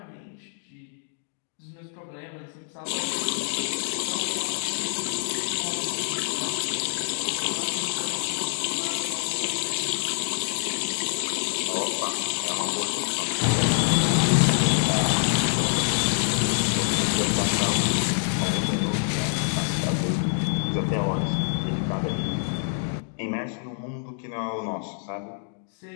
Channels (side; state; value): right; silent; digital silence